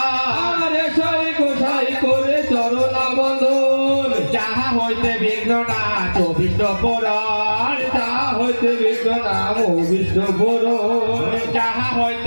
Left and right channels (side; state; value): both; inverted; correlation -1.00